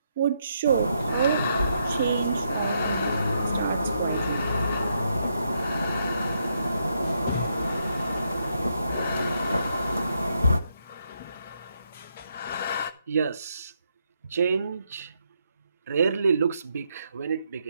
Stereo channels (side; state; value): both; inverted; correlation -0.78